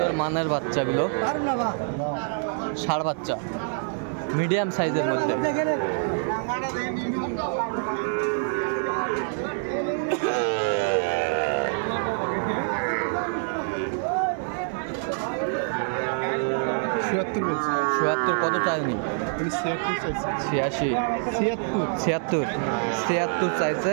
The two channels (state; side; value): silent; left; 61 dB below the other